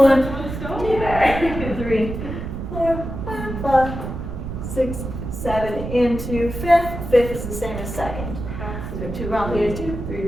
2, 3, 4, and 5, 6, 7. Into fifth. Fifth is the same as second. So 2 round plies. 2, 3,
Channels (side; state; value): right; noise; rumble, 7 dB below the sound